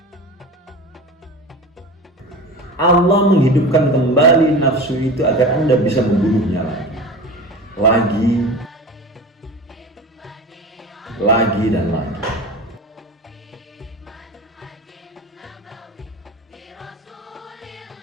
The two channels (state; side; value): normal; both; correlation 0.32